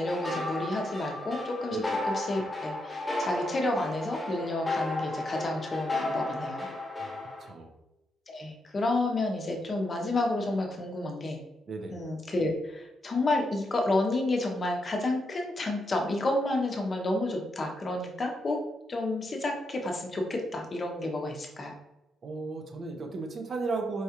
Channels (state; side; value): normal; both; correlation 0.82